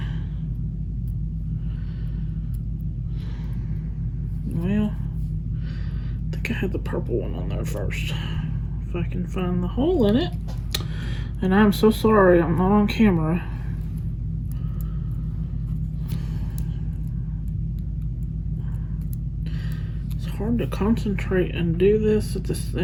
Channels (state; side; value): identical; both; correlation 1.00